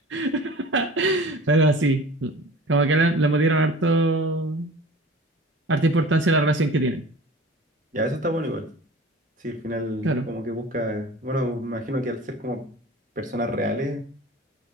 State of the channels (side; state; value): both; normal; correlation 0.41